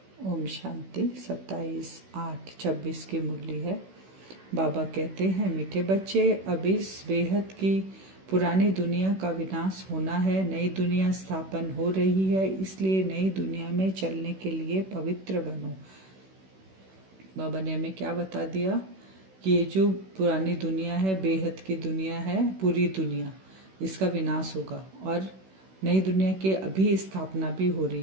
ओम शांति। 27/8/26 की मुरली है। बाबा कहते हैं, मीठे बच्चे, अब इस बेहद की पुरानी दुनिया का विनाश होना है, नई दुनिया स्थापन हो रही है, इसलिए नई दुनिया में चलने के लिए पवित्र बनो। बाबा ने हमें क्या बता दिया कि ये जो पुरानी दुनिया है, बेहद की दुनिया है, पूरी दुनिया, इसका विनाश होगा और नई दुनिया की अभी स्थापना भी हो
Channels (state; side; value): late; left; 16 ms